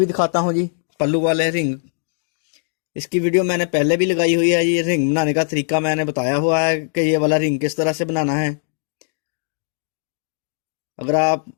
दिखाता हूं जी, पल्लू वाले रिंग। इसकी वीडियो मैंने पहले भी लगाई हुई है। ये रिंग बनाने का तरीका मैंने बताया हुआ है कि ये वाला रिंग किस तरह से बनाना है। अगर आप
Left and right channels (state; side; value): silent; right; digital silence